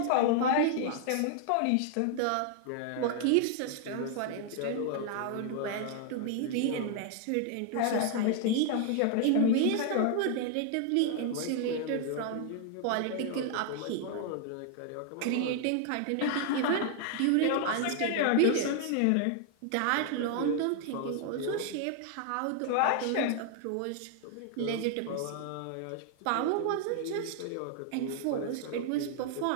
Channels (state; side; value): different; both; correlation 0.00